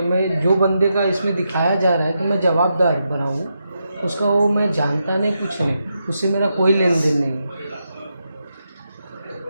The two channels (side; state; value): both; inverted; correlation -0.84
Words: मैं जो बंदे का इसमें दिखाया जा रहा है कि मैं जवाबदार बना हूँ, उसका वो मैं जानता नहीं, कुछ नहीं, उससे मेरा कोई लेन देन नहीं है।